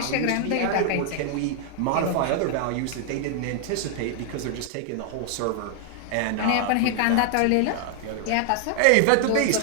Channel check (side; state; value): both; different; correlation 0.00